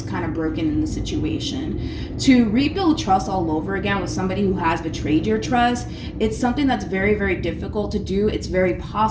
kind of broken in the situation. To rebuild trust all over again with somebody who has betrayed your trust, it's something that's very, very difficult to do. It's very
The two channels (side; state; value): both; identical; correlation 1.00